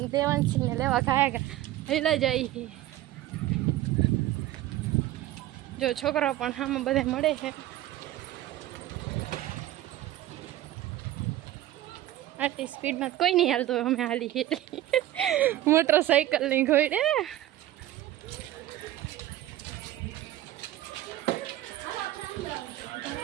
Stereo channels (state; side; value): quieter; left; 14.3 dB